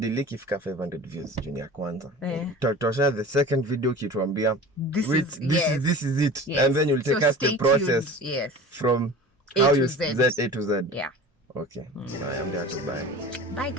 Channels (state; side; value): normal; both; correlation 0.38